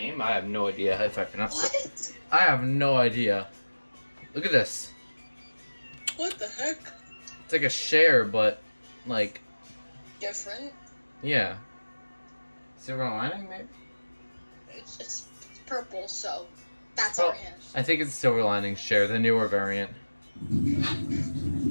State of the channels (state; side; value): inverted; both; correlation -1.00